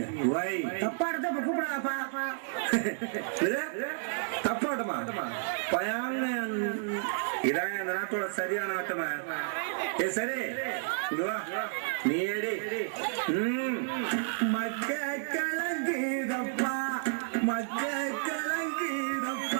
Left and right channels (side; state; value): left; silent; digital silence